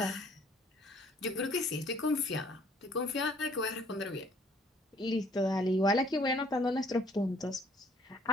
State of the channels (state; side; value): normal; both; correlation 0.60